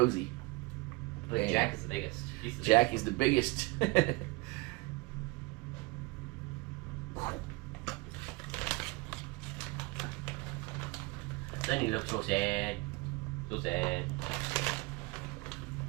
But Jack is the biggest. Jack is the biggest. Sonny looks so sad. So sad.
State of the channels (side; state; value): left; quieter; 24.3 dB